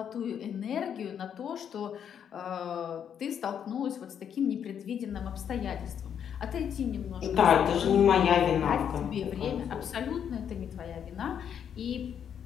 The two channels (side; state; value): right; quieter; 8.5 dB